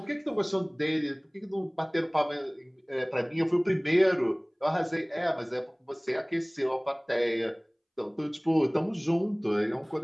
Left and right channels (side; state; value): both; identical; correlation 1.00